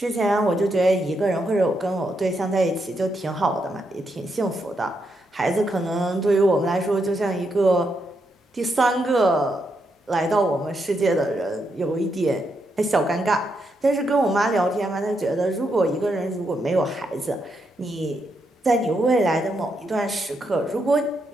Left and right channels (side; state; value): both; normal; correlation 0.81